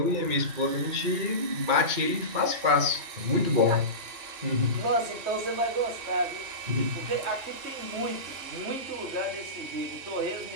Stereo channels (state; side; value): late; left; 2.4 ms